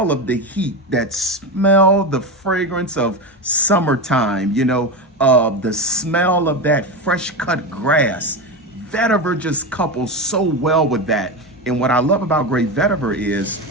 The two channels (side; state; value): both; normal; correlation 0.17